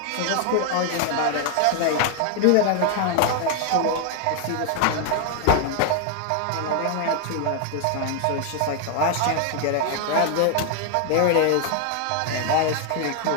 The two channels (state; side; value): different; both; correlation 0.00